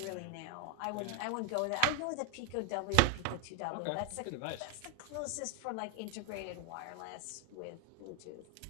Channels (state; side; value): different; both; correlation 0.01